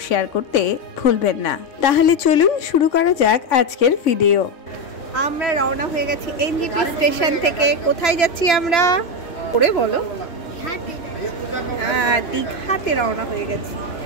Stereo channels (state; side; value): late; right; 3.0 ms